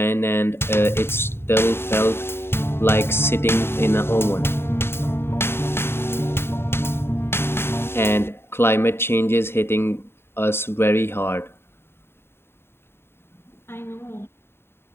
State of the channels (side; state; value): right; late; 0.11 ms